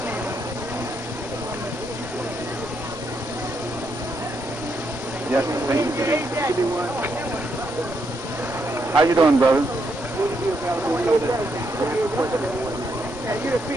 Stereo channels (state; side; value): normal; both; correlation 0.78